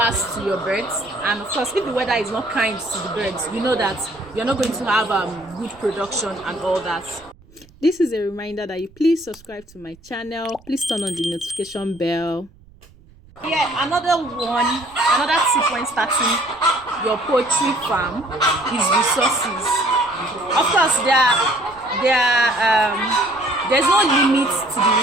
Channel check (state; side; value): noise; right; rumble, 26 dB below the sound